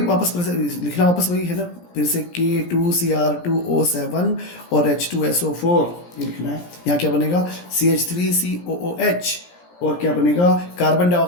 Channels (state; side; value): late; right; 17 ms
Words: वापस लिखना वापस वही है ना, फिर से K2Cr2O7 और H2SO4 ये लिखना है। यहाँ क्या बनेगा? CH3COOH, और क्या बनेगा? कार्बन